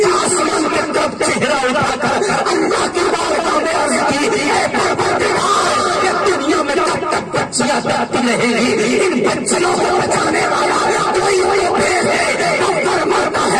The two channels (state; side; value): identical; both; correlation 1.00